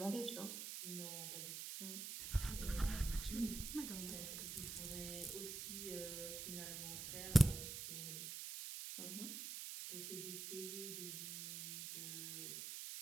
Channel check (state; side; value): noise; right; hiss, 5 dB below the sound